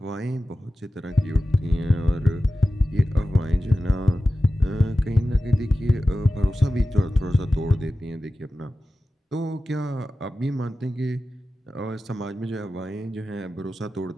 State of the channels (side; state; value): both; normal; correlation 0.94